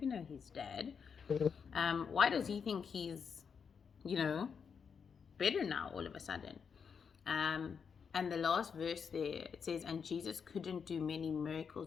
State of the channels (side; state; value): right; quieter; 6.4 dB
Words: know his dad? Why does he think he's, better now all of a sudden? And the last verse there, it says, and Jesus couldn't do many